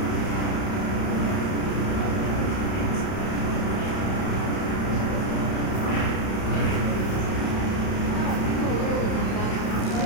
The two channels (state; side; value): late; right; 31 ms